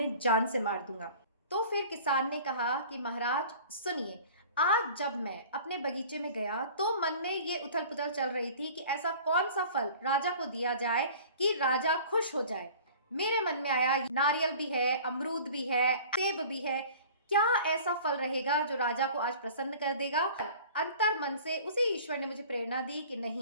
जान से मार दूंगा। तो फिर किसान ने कहा कि महाराज सुनिए, आज जब मैं अपने बगीचे में गया तो मन में ये उथल पुथल चल रही थी कि ऐसा कौन सा फल राजा को दिया जाए कि राजा खुश हो जाए। मेरे मन में आया, नारियल भी है, अमरूद भी है, सेब भी है, क्या ऐसा फल रहेगा जो राजा को आज प्रसन्न कर देगा। अंतर मन से उसी ईश्वर ने मुझे प्रेरणा दी कि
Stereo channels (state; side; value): inverted; both; correlation -0.45